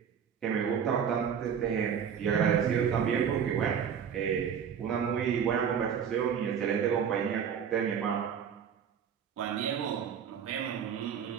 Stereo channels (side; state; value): left; quieter; 7.8 dB